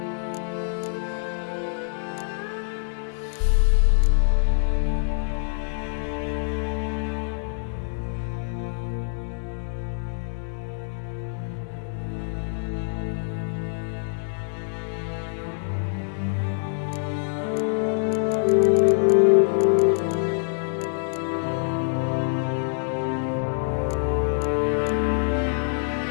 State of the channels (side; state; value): right; silent; digital silence